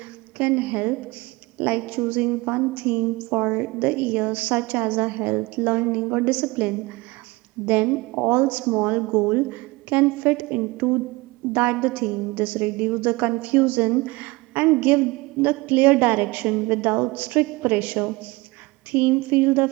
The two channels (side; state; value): left; quieter; 23.0 dB